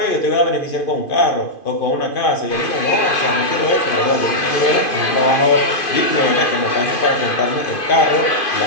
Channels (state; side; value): late; right; 2.5 ms